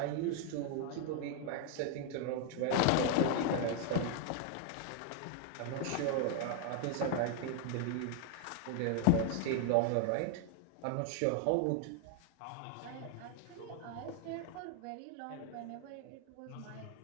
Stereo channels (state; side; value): different; both; correlation 0.00